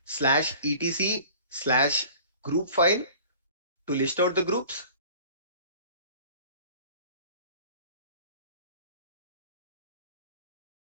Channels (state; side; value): inverted; both; correlation -0.46